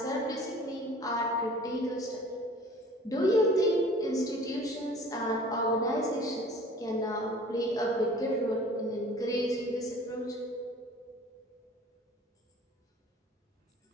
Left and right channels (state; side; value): normal; both; correlation 0.47